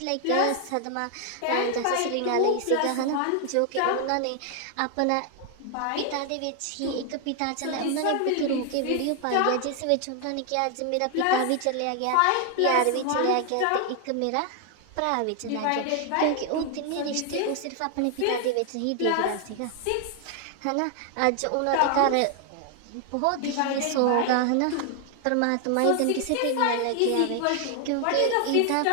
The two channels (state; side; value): different; both; correlation 0.00